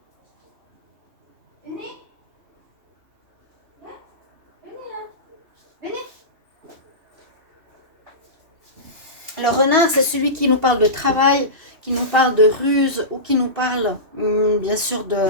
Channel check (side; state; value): left; late; 3.0 ms